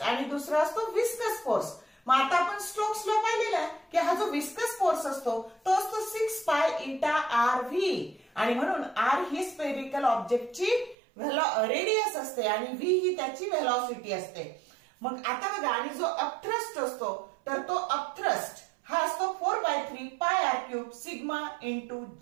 आणि दुसरा असतो विस्कस फोर्स. मग आता आपण स्ट्रोक्स ला पाहिलेला आहे की हा जो विस्कस फोर्स असतो तो असतो 6 पाय इटा आर व्ही आणि म्हणून आर ही स्पेरिकल ऑब्जेक्टची रेडियस असते आणि व्ही ही त्याची व्हेलॉसिटी असते. मग आता बघा आणि जो अपथ्रस्ट असतो तर तो अपथ्रस्ट हा असतो 4/3 pi r cube sigma into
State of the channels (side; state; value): left; drops out; at 11.0 s